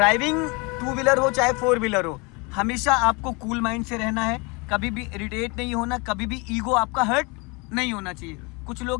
2 व्हीलर हो चाहे 4 व्हीलर हो, हमेशा आपको कूल माइंड से रहना है, कभी भी इरिटेट नहीं होना, कभी भी ईगो आपका हर्ट नहीं होना चाहिए। कुछ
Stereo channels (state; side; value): quieter; right; 28.9 dB